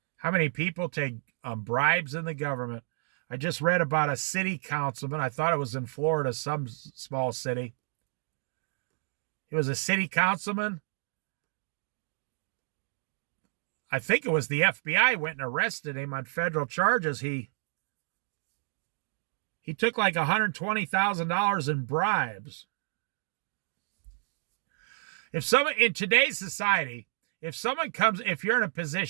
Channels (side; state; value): left; silent; 58 dB below the other